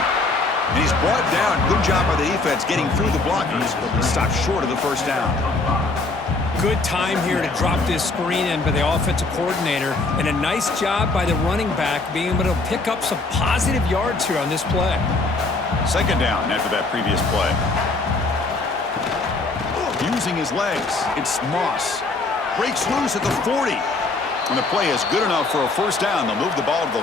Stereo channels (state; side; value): quieter; right; 3.4 dB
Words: And he's brought down. Good job by the defense getting through the blockers, but he stopped short of the first down. Good time here to drop this screen in by the offensive coordinator, and a nice job by the running back being able to pick up some positive yards here on this play. Second down after that previous play. Using his legs, it's Moss. Breaks loose at the 40. And the play is good enough for a first down. They'll move the ball to the